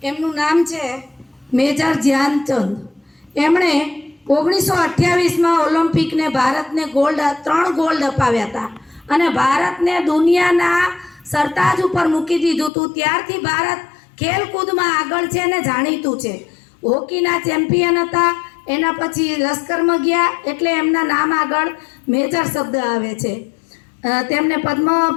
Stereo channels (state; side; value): drops out; right; at 12.7 s